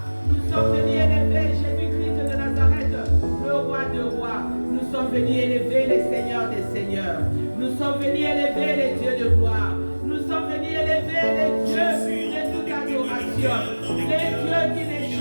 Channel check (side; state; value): both; inverted; correlation -1.00